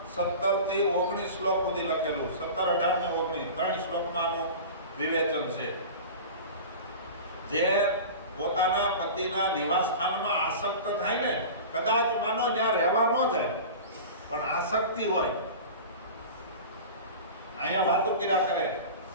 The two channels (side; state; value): both; inverted; correlation -0.34